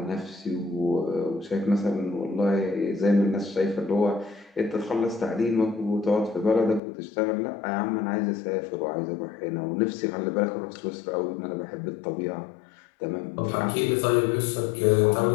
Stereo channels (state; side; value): drops out; right; at 6.8 s